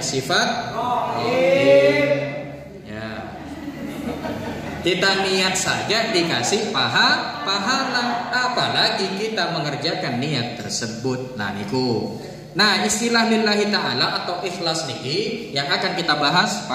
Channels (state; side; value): identical; both; correlation 1.00